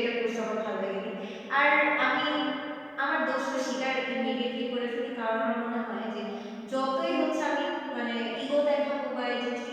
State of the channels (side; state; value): both; identical; correlation 1.00